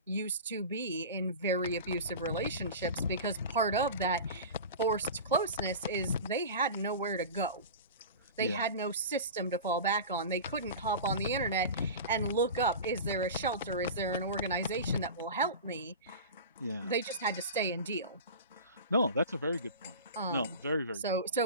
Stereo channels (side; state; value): both; inverted; correlation -0.31